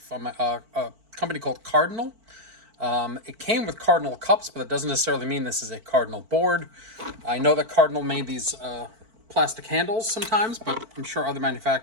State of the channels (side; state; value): left; late; 4.5 ms